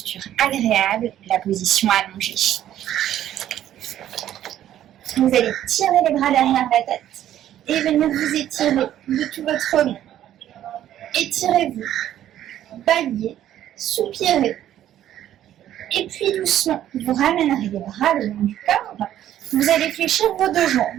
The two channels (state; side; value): quieter; left; 11.8 dB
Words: agréable, la position allongée. Vous allez tirer les bras derrière la tête et venir vous étirer de tout votre long. Étirez-vous, baillez, soupirez. Et puis doucement, vous ramènerez les bras le long du corps. Vous allez fléchir vos deux